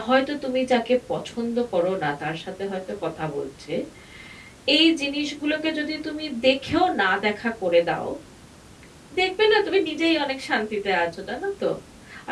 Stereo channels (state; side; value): identical; both; correlation 1.00